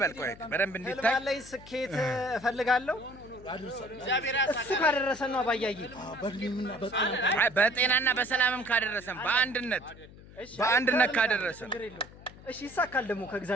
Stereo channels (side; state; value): left; noise; hum, 19 dB below the sound